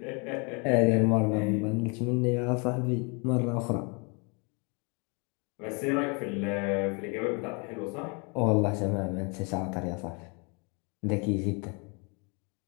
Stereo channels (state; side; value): quieter; right; 32.5 dB